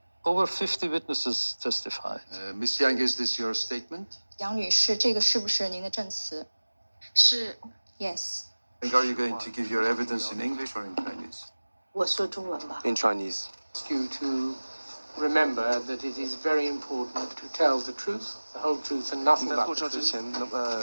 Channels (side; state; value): both; inverted; correlation -1.00